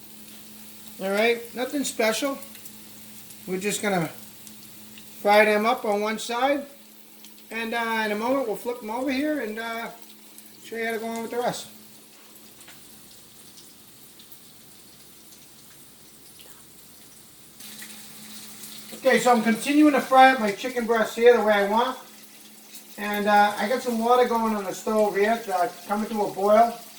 Alright, nothing special. We're just going to fry them up on one side. And in a moment we'll flip them over here and show you how to go on with the rest. Okay, so I'm continuing to fry up my chicken breasts here the way I want. And I got some water going on the stove here, coming to a boil.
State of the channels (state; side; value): identical; both; correlation 1.00